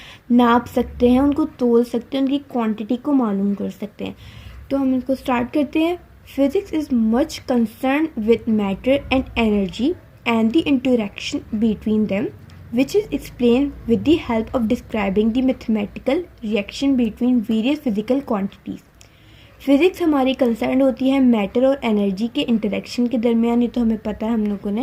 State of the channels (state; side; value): identical; both; correlation 1.00